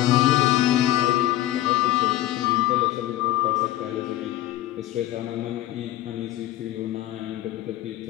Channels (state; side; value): quieter; right; 14.4 dB